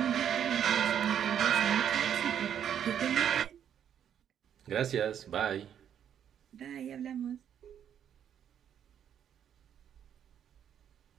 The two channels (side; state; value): left; quieter; 9.2 dB